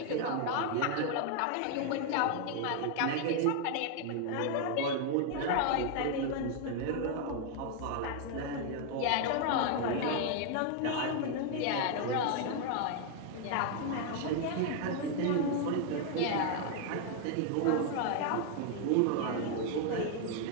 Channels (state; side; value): different; both; correlation 0.00